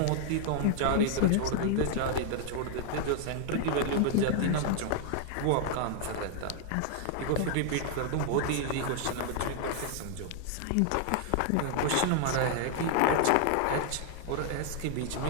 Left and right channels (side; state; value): both; different; correlation 0.00